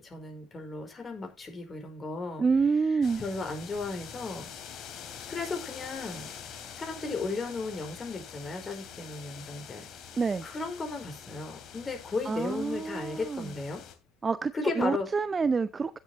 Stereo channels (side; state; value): both; normal; correlation 0.83